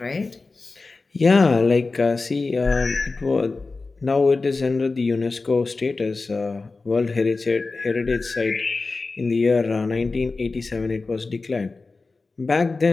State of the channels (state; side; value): quieter; right; 3.8 dB